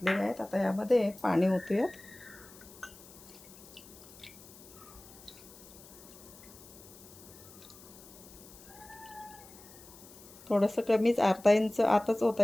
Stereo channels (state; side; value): noise; left; hiss, 20 dB below the sound